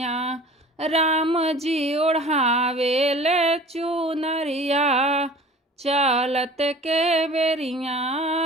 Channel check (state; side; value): normal; both; correlation 0.44